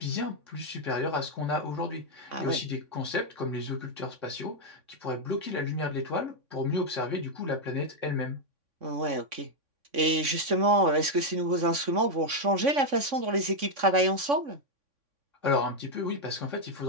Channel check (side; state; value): left; late; 3.6 ms